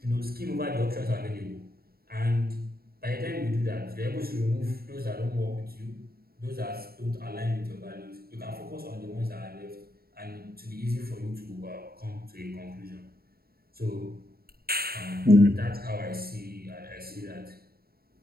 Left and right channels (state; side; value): late; left; 0.44 ms